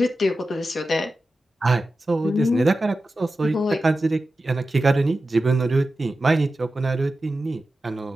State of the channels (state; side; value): normal; both; correlation 0.93